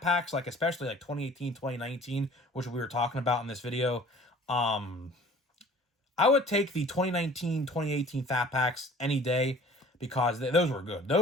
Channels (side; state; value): both; normal; correlation 0.48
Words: packs, like, especially, like, 2018, 2019, which we were talking about in this video, I would take the 2019, 2018 fat packs any day, because those were good.